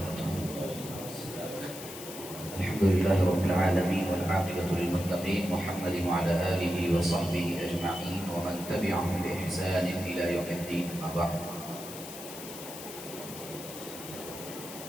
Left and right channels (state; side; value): noise; left; hiss, 12 dB below the sound